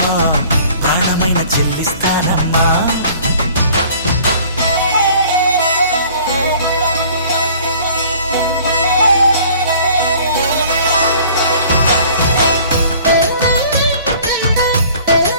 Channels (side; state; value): both; inverted; correlation -0.52